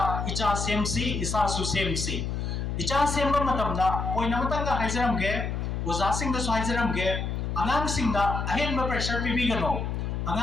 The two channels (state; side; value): noise; left; hum, 2 dB below the sound